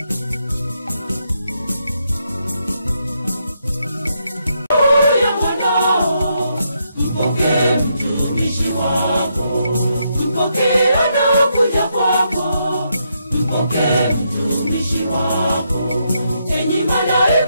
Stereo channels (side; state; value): both; inverted; correlation -0.79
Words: Mpokee mtumishi wako, mpokee anakuja kwako, mpokee mtumishi wako. Enyi